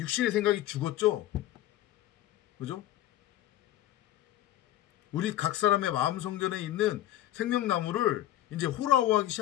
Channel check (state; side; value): quieter; right; 13.5 dB